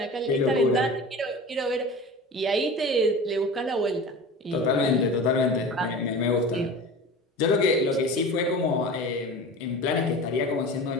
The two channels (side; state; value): both; normal; correlation 0.34